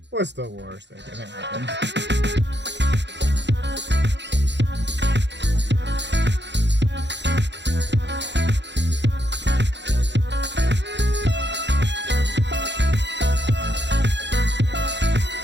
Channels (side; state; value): left; late; 0.52 ms